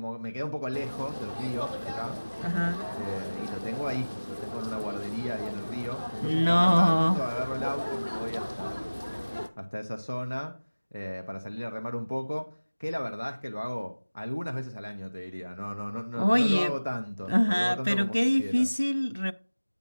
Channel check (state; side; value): inverted; both; correlation -1.00